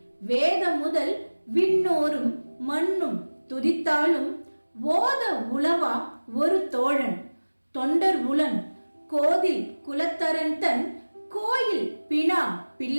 வேத முதல் விண்ணோரும் மண்ணும் துதித்தாலும் ஓத உளவா ஒரு தோழன் தொண்டர் உளன் கோதில் குலத்தரன் தன் கோயில் பினா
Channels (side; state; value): both; inverted; correlation -1.00